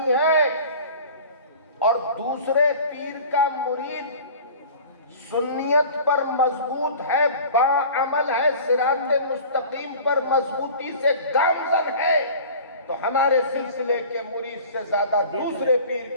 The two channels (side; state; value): both; inverted; correlation -0.41